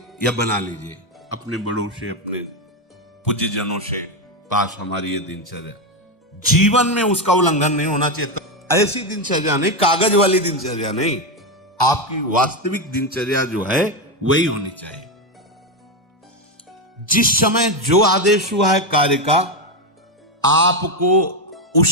या बना लीजिए अपने बड़ों से, अपने पूज्यजनों से पास हमारी ये दिनचर्या, जीवन में उसका उल्लंघन नहीं होना चाहिए। ऐसी दिनचर्या नहीं, कागज वाली दिनचर्या नहीं, आपकी वास्तविक दिनचर्या जो है वही होनी चाहिए। जिस समय जो आदेश हुआ है कार्य का, आपको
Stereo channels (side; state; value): both; normal; correlation 0.09